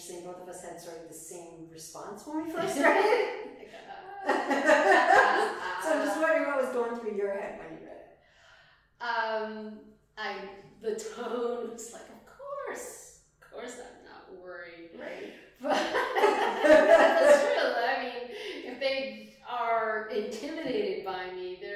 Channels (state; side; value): identical; both; correlation 1.00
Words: Both of us had sort of the same response when we first read it. So I'm just wondering what was going through your head when you read it. The tone was like, of course I'm not worried. Right. But that's true. I mean, if they are intimidated by me,